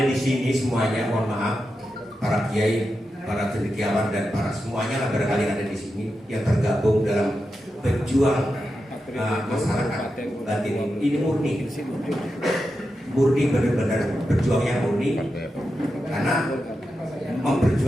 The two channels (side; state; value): both; normal; correlation 0.89